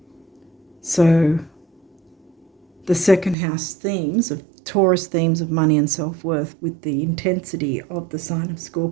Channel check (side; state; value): left; drops out; at 3.4 s